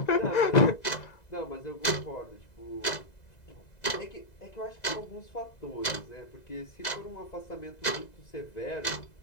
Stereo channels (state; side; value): late; right; 2.0 ms